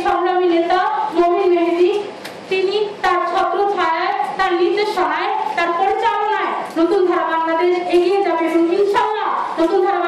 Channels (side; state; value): both; identical; correlation 1.00